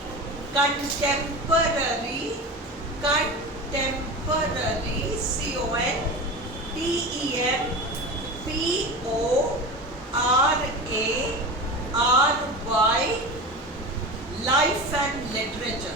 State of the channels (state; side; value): normal; both; correlation 0.28